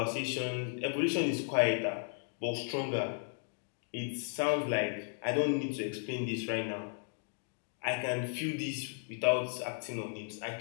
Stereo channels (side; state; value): right; silent; 54 dB below the other